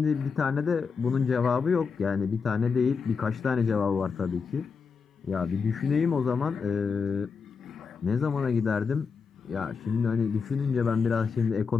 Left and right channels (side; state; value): right; quieter; 5.4 dB